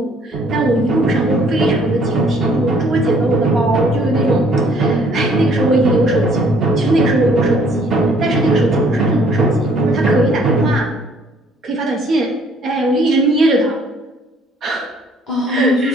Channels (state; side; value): normal; both; correlation 0.61